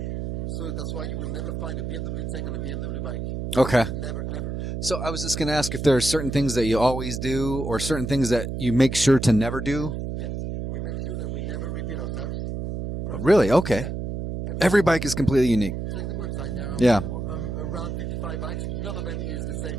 So that's why you will never find a BMW tank on a BMW bike. Okay. Never, ever. So I was just going to ask if there are certain things that you always do or certain things that you make sure to never do. Yes. We make sure that we never repeat ourselves. Really? Okay. Every bike is completely unique. Check the website now. Yeah. Around 55 bikes, none of them is the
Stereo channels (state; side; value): noise; right; hum, 4 dB below the sound